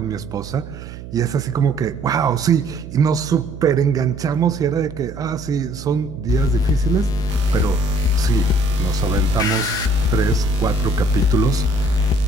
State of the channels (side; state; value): right; noise; hum, 13 dB below the sound